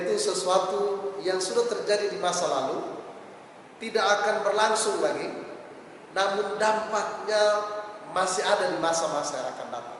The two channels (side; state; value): both; identical; correlation 1.00